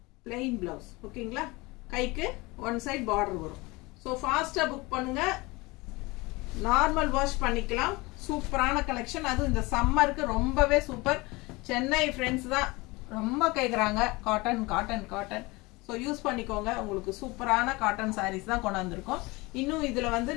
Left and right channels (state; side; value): quieter; right; 23.6 dB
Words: plain blouse. ஓகேங்களா? கைக்கு ஒன் சைட் பார்டர் வரும். ஸோ ஃபாஸ்ட்டாக புக் பண்ணுங்க, நார்மல் வாஷ் பண்ணிக்கலாம். சூப்பரான கலெக்ஷன். அதுவும் இந்த சம்மருக்கு ரொம்பவே சூப்பர். சென்னை ஃப்ரெண்ட்ஸ் தான் ரொம்ப கேட்குறாங்க cotton cotton cotton. So use பண்ணிக்கோங்க. உங்களுக்கு சூப்பரான காட்டன் சாரீஸ் தான் கொண்டாந்துருக்கோம். இன்னும் இதில் வந்து